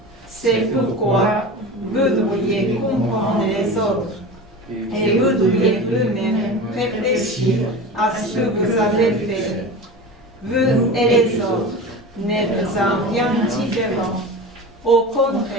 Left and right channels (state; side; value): normal; both; correlation 0.31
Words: C'est pourquoi vous devriez comprendre les autres et vous devriez vous-même réfléchir à ce que vous avez fait. Vous et les autres n'êtes en rien différents. Au